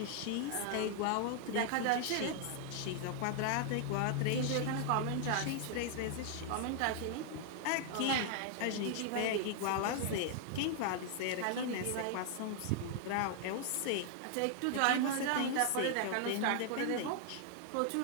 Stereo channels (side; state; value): both; different; correlation 0.00